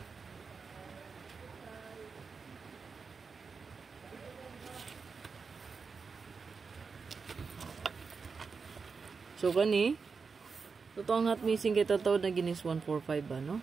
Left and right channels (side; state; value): left; quieter; 5.1 dB